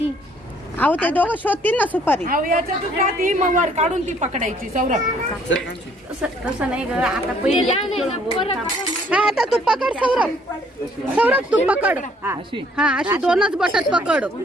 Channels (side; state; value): both; normal; correlation 0.62